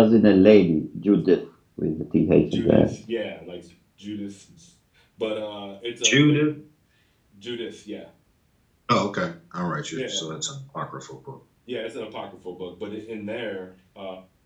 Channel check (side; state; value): both; identical; correlation 1.00